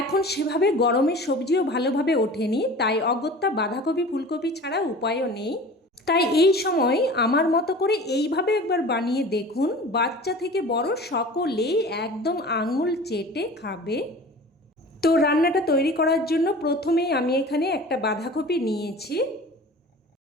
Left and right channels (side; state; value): both; normal; correlation 0.40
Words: এখন সেভাবে গরমের সবজিও ভালোভাবে ওঠেনি, তাই অগত্যা বাঁধাকপি ফুলকপি ছাড়া উপায়ও নেই। তাই এই সময় আমার মতো করে এইভাবে একবার বানিয়ে দেখুন, বাচ্চা থেকে বড় সকলেই একদম আঙুল চেটে খাবে। তো রান্নাটা তৈরি করার জন্য প্রথমেই আমি এখানে একটা বাঁধাকপি নিয়েছি।